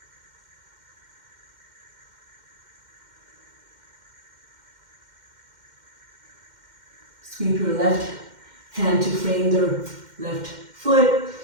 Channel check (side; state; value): left; late; 2.1 ms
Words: Sweep your left hand to frame the left foot.